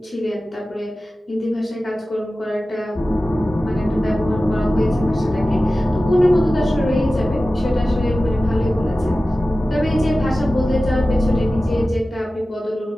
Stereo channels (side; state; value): both; normal; correlation 0.95